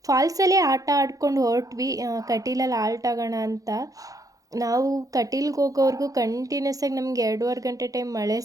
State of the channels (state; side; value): late; left; 0.17 ms